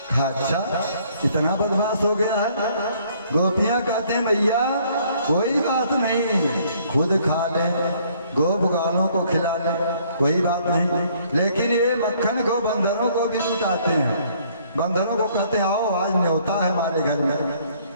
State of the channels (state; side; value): inverted; both; correlation -0.62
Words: अच्छा इतना बदमाश हो गया है। गोपियाँ कहते हैं भैया कोई बात नहीं, खुद खा ले, गो बुगालों को खिला ले, कोई बात नहीं, लेकिन ये मक्खन को बंदरों को भी लुटाते हैं। बंदरों को कहते हैं आओ आज न्योता है हमारे घर में,